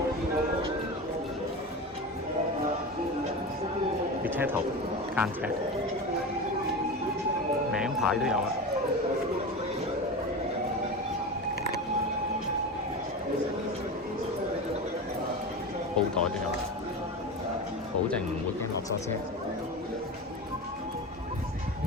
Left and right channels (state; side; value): normal; both; correlation 0.25